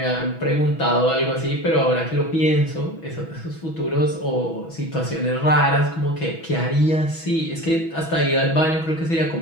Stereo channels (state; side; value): late; right; 6.1 ms